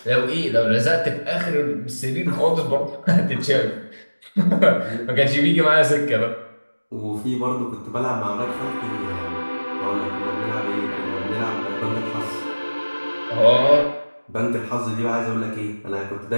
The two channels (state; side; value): inverted; both; correlation -1.00